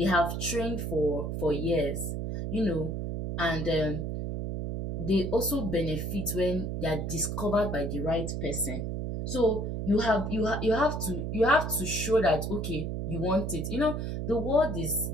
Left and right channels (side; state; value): right; noise; hum, 3 dB below the sound